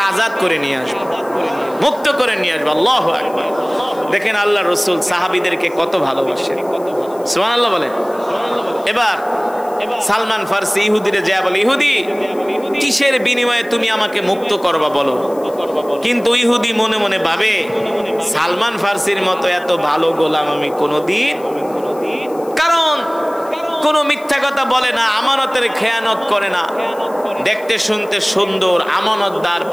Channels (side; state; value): left; noise; hiss, 24 dB below the sound